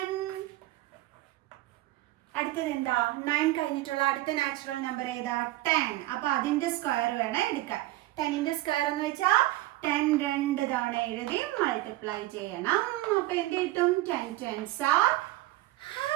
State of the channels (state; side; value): quieter; left; 17.4 dB